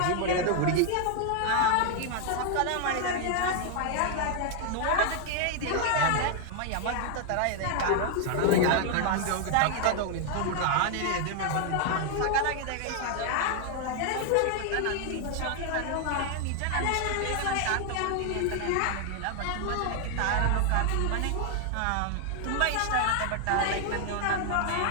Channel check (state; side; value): different; both; correlation 0.00